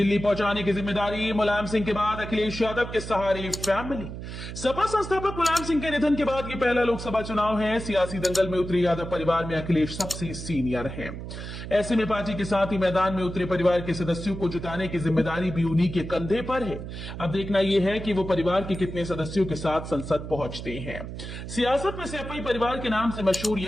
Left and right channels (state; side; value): noise; right; hum, 9 dB below the sound